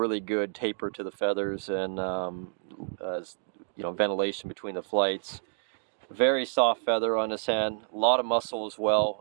good taper to the feathers, and ventilation between the flights. Very soft feather on this hen, a lot of muscle as well.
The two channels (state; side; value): silent; left; digital silence